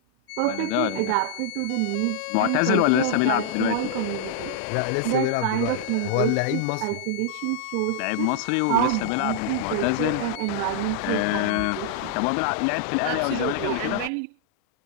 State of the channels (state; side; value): different; both; correlation -0.01